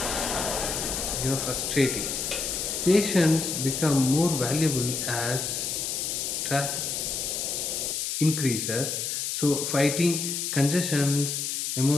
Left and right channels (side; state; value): left; noise; hiss, 2 dB below the sound